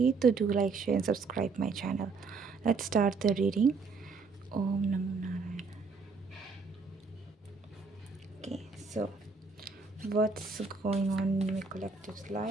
तो do like, share and subscribe my channel. Let's start the reading. Om Namo Narayana. Okay, so what's going on in my collective's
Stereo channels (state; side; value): quieter; left; 4.5 dB